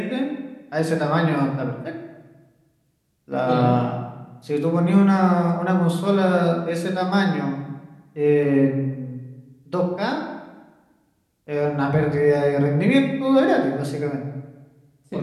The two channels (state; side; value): identical; both; correlation 1.00